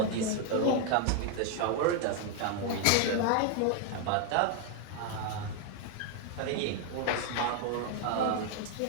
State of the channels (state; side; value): different; both; correlation 0.01